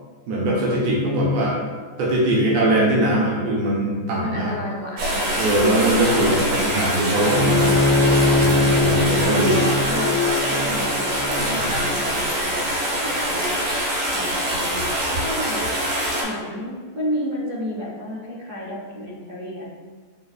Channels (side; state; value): left; late; 14 ms